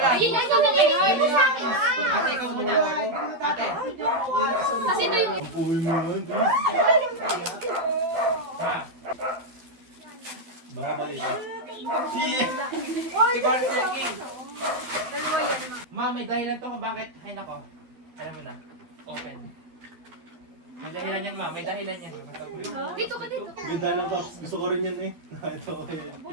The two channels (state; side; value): late; left; 12 ms